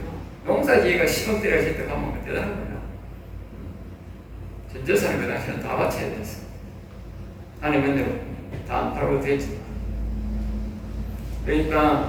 농사지가 10억대를 하실 때 가면 대단한 거예요. 전 재산을 그 당시에는 다 바쳐야 됐어. 하나님은 다안 팔고 되지.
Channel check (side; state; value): both; identical; correlation 1.00